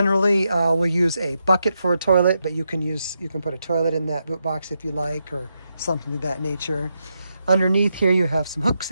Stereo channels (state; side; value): inverted; both; correlation -0.84